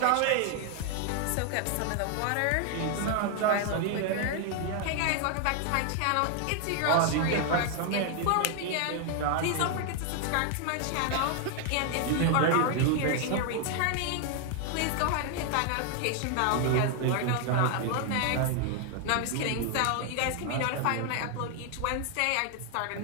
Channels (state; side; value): different; both; correlation 0.00